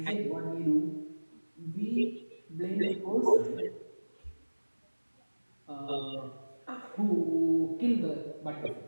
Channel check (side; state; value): both; inverted; correlation -1.00